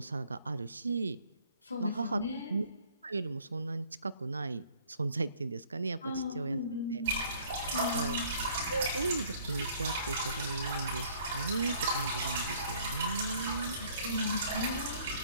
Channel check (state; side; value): inverted; both; correlation -0.58